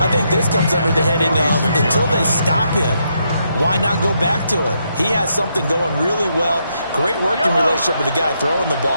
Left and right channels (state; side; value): inverted; both; correlation -0.78